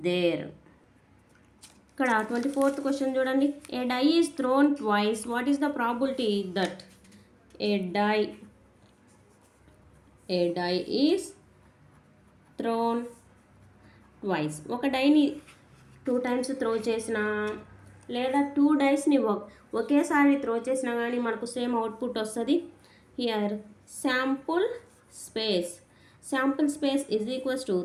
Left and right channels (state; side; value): identical; both; correlation 1.00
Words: there. ఇక్కడ 24th క్వశ్చన్ చూడండి. A die is thrown twice. What is the probability that a die is thrown twice? ఒక డైని 2 times throw చేసినా లేదా 2 డైస్ని ఒకేసారి త్రో చేసినా కానీ మనకు సేమ్ అవుట్పుట్ వస్తుంది. Here sample space is equals to